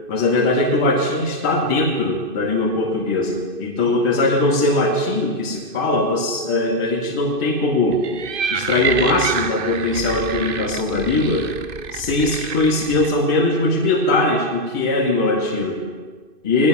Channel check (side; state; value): left; late; 2.5 ms